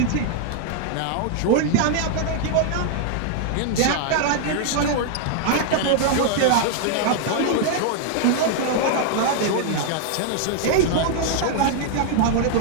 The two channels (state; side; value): different; both; correlation 0.00